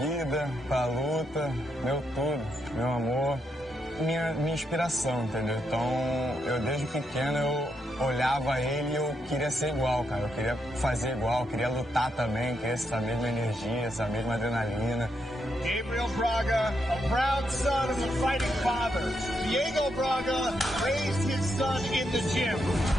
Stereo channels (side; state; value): both; normal; correlation 0.80